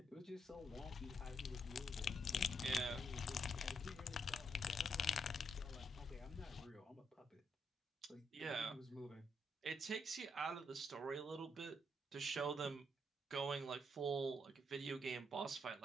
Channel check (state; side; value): normal; both; correlation 0.76